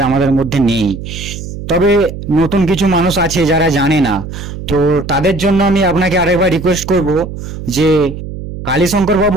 আমাদের মধ্যে নেই। তবে নতুন কিছু মানুষ আছে যারা জানে না, তো তাদের জন্য আমি আপনাকে আরেকবার রিকোয়েস্ট করব যে কালীশঙ্কর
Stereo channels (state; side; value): noise; right; hum, 9 dB below the sound